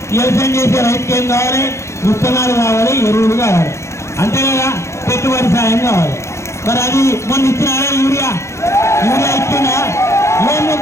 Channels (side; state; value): right; late; 0.14 ms